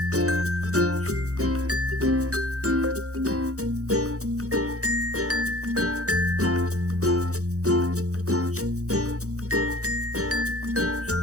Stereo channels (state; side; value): late; left; 0.65 ms